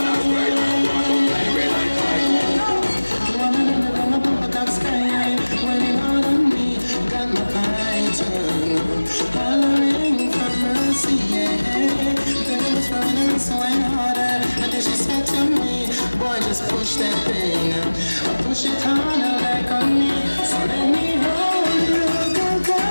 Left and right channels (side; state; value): both; inverted; correlation -1.00